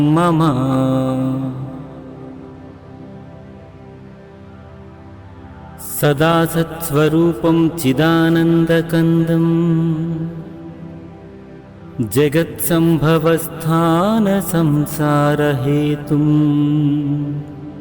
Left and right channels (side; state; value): both; identical; correlation 1.00